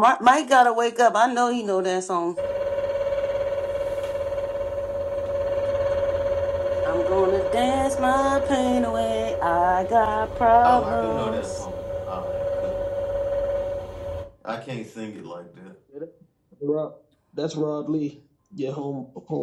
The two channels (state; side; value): identical; both; correlation 1.00